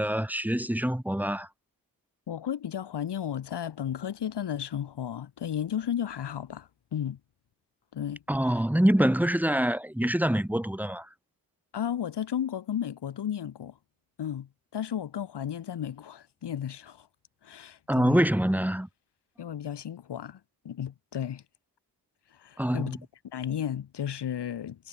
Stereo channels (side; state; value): both; normal; correlation 0.69